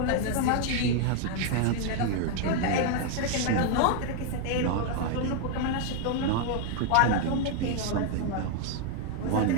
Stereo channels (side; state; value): both; different; correlation 0.00